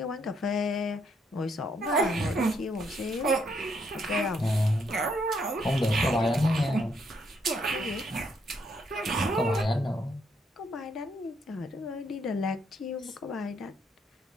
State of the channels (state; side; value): normal; both; correlation 0.73